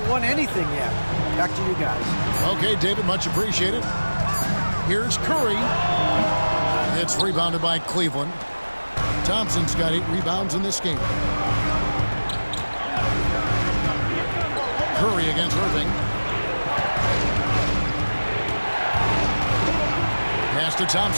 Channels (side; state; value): both; inverted; correlation -1.00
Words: won anything yet. Back to you guys. Okay, David, much appreciated. Here's Curry. It's rebounded by Cleveland. Thompson's got 8 rebounds in this game. Curry against Irving. Pass to